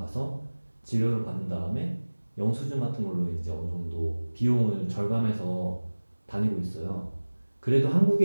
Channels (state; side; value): inverted; both; correlation -1.00